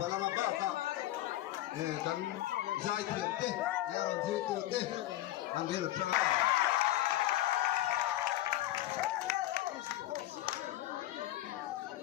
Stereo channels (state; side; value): quieter; right; 15.2 dB